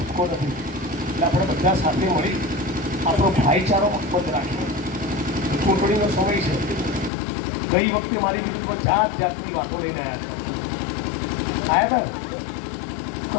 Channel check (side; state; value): right; drops out; at 7.1 s